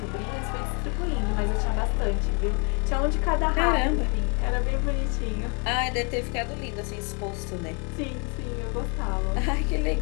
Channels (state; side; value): quieter; right; 35.9 dB